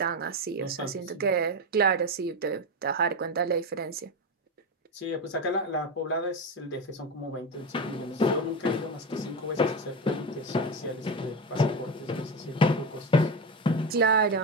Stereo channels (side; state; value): both; normal; correlation 0.17